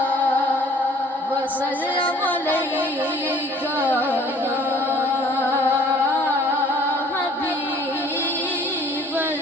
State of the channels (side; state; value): both; normal; correlation 0.54